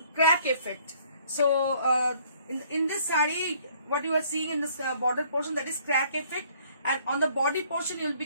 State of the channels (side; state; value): both; inverted; correlation -0.61